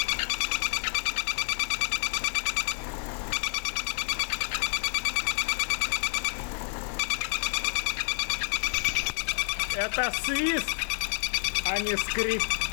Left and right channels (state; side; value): silent; right; 59 dB below the other